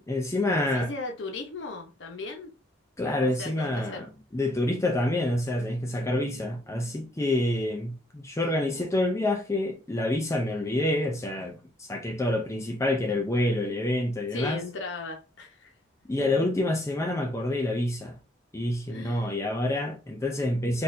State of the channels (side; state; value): both; normal; correlation 0.68